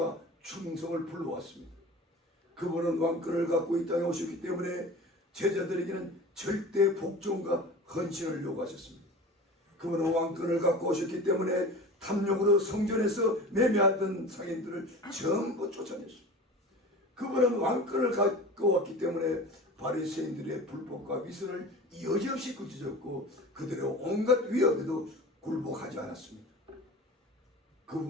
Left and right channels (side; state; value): both; normal; correlation 0.36